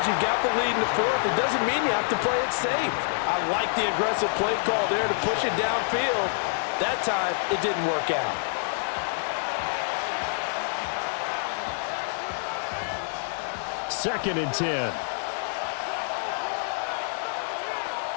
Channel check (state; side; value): silent; right; digital silence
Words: you got the lead in the fourth, it doesn't mean you have to play it safe. I like the aggressive play call there to push it downfield. That time, it didn't work out. Second and 10.